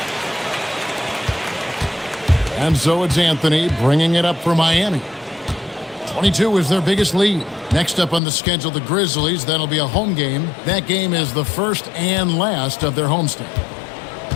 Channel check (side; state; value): right; drops out; at 8.2 s